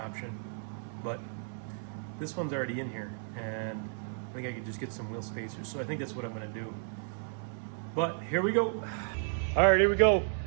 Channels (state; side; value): silent; left; digital silence